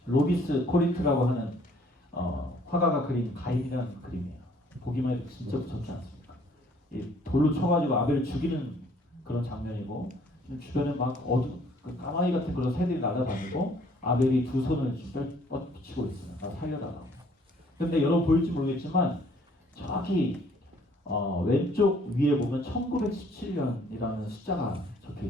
로비스 코린트라고 하는 화가가 그린 가인이라는 그림이에요. 보기만 해도 진짜 무섭지 않습니까? 이 돌로 쳐가지고 아벨을 죽이는 그런 장면이고 주변에 막 그 까마귀 같은 그런 새들이 날아다니고 아벨이 두 손을 뻗치고 있어요. 나 살려달라고. 근데 여러분 보일지 모르겠지만 정확히 왼쪽 위에 보면 1917년이라는 숫자가 적혀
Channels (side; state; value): both; normal; correlation 0.60